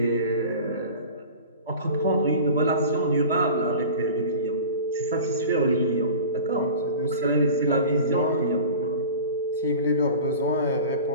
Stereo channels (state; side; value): inverted; both; correlation -0.37